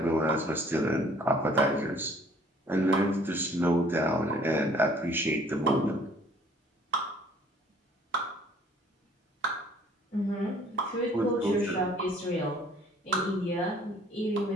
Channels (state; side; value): normal; both; correlation 0.57